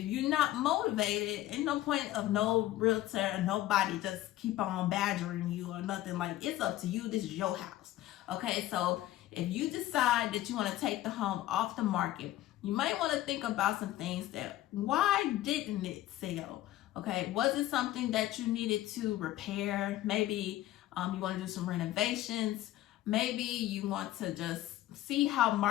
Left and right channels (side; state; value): right; quieter; 14.9 dB